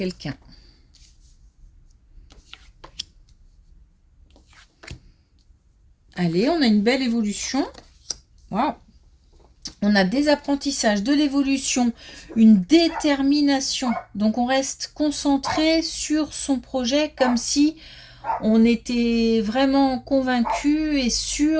Allez, on a une belle évolution. Waouh! On a des apprentissages, de l'évolution, une détermination. Donc on reste concentré sur son projet comme si on était vraiment convaincu et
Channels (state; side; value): identical; both; correlation 1.00